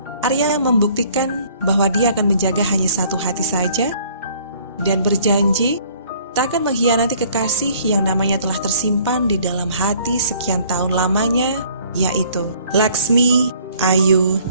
Arya membuktikan bahwa dia akan menjaga hanya satu hati saja, dan berjanji tak akan mengkhianati kekasih yang namanya telah tersimpan di dalam hati sekian tahun lamanya, yaitu Laksmi Ayu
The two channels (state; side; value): inverted; both; correlation -0.57